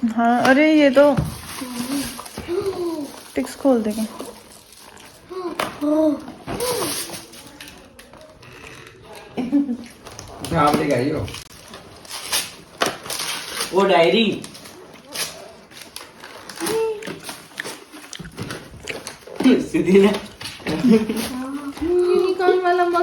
हाँ अरे ये तो टिक्स खोल देंगे। आप लेके आई हो वो डायरी। सीधी ने यूनिकॉर्न वाला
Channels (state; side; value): identical; both; correlation 1.00